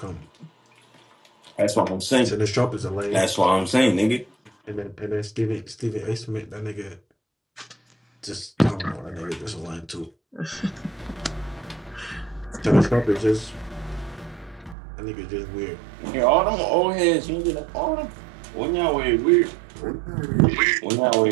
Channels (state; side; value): drops out; left; at 14.8 s